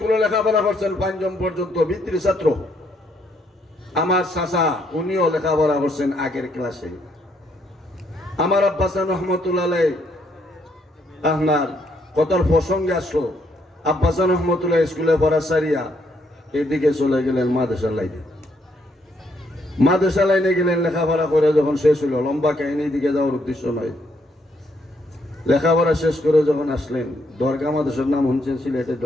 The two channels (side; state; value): both; normal; correlation 0.73